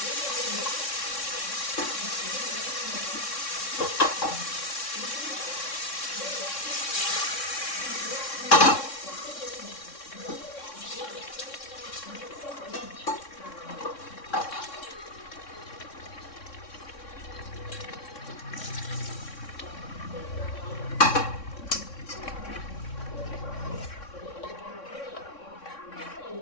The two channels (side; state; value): right; late; 3.6 ms